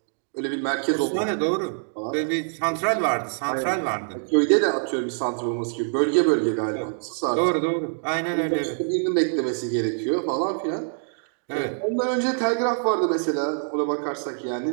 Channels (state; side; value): silent; left; digital silence